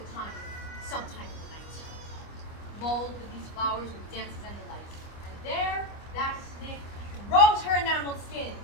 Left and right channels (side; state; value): right; late; 25 ms